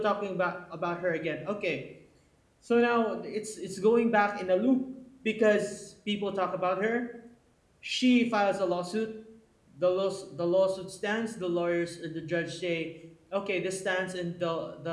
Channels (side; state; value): both; identical; correlation 1.00